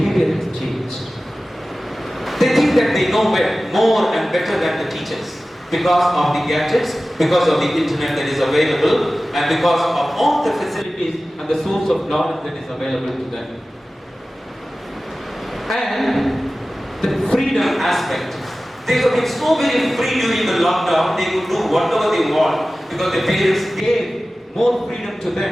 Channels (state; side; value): normal; both; correlation 0.96